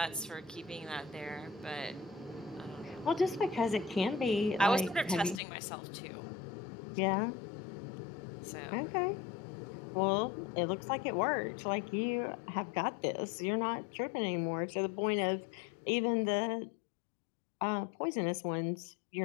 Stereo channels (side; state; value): right; drops out; at 5.4 s